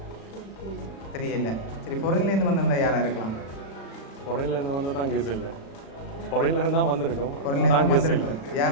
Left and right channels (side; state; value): right; late; 36 ms